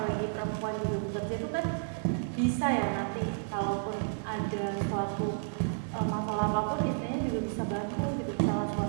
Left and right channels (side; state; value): left; silent; digital silence